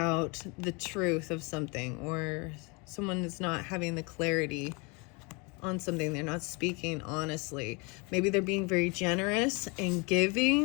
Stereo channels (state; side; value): quieter; right; 30.0 dB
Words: the truth of something. Or someone is not having the clarity on something. They're not speaking honestly. Maybe they're being very generous and